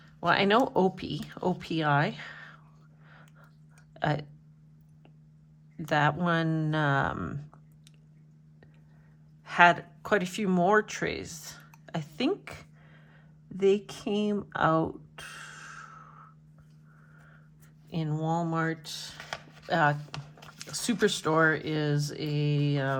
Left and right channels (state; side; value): identical; both; correlation 1.00